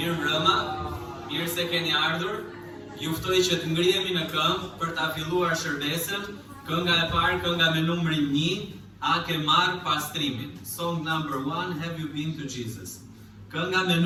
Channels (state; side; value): identical; both; correlation 1.00